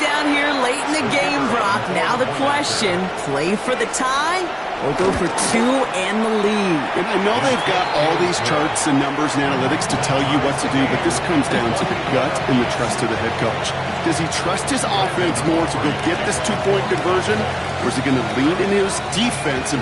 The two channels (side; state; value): both; identical; correlation 1.00